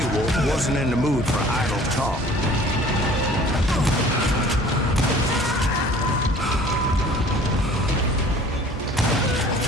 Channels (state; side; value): normal; both; correlation 0.49